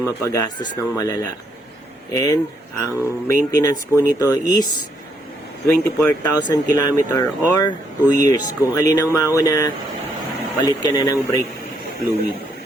mapagastos ng malala. And ang maintenance po nito is 24,000 km or 2 years. Kung alin ang mauna, palit ka na ng brake fluid.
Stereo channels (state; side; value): normal; both; correlation 0.73